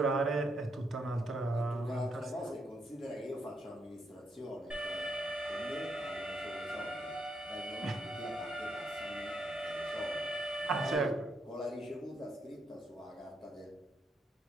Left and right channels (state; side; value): normal; both; correlation 0.78